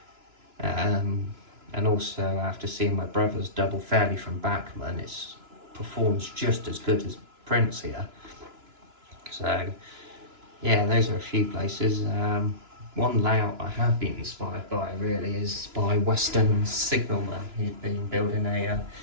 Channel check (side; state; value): left; late; 2.9 ms